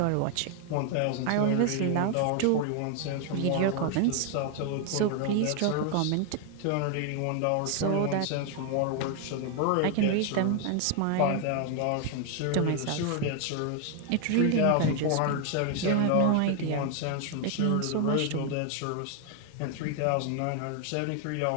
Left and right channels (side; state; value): both; different; correlation 0.01